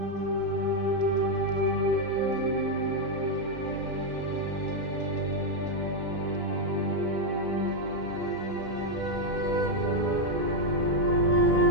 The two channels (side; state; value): left; late; 2.2 ms